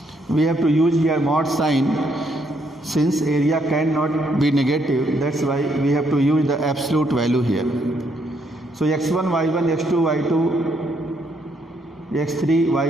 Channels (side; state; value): both; normal; correlation 0.73